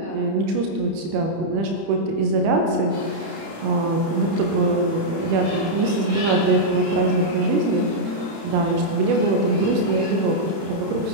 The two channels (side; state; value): left; late; 31 ms